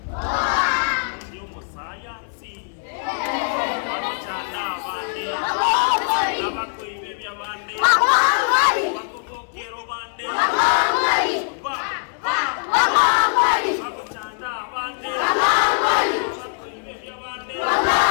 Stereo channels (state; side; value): silent; right; digital silence